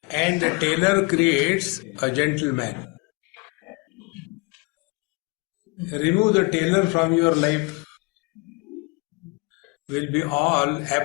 and the tailor creates a gentleman. Remove the tailor from your life, will be all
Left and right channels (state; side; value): quieter; right; 27.6 dB